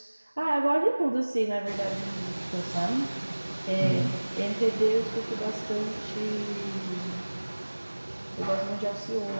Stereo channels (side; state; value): both; inverted; correlation -1.00